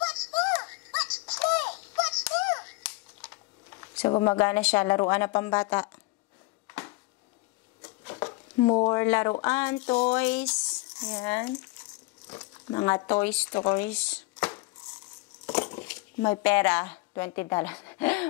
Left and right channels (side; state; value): right; quieter; 22.8 dB